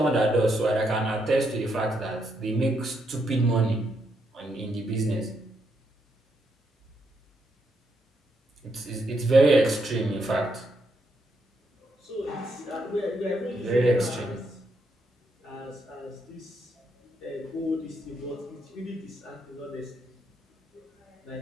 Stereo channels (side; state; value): both; normal; correlation 0.78